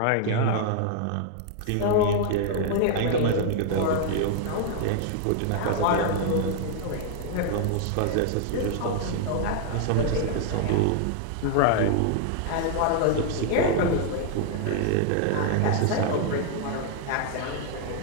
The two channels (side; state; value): both; different; correlation -0.01